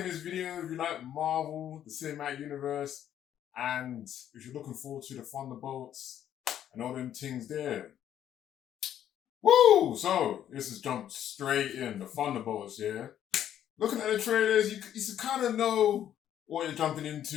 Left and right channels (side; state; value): right; quieter; 10.6 dB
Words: this video if you like Marvel, the Cinematic Universe, and if you're looking forward to the Thunderbolts and all them things there. Woo! So, this is jumped straight in, the Thunderbolts, yeah? Looking at the trailers, you kind of know what you're jumping